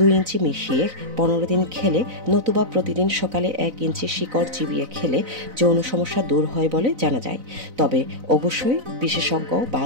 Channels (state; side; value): late; left; 4.0 ms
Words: ইঞ্চি মিশিয়ে 15 দিন খেলে, নতুবা প্রতিদিন সকালে 1 ইঞ্চি শিকড় চিবিয়ে খেলে যৌন সমস্যা দূর হয় বলে জানা যায়। তবে অবশ্যই বিশেষজ্ঞ বা